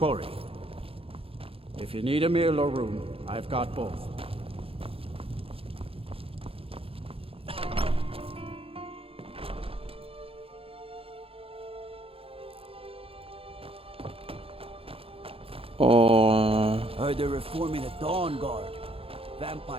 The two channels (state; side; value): late; left; 0.27 ms